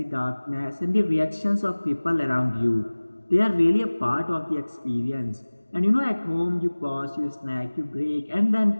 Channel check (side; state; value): both; inverted; correlation -1.00